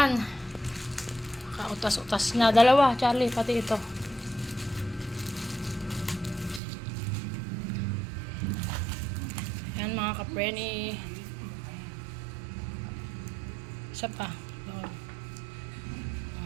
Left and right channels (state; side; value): drops out; left; at 6.6 s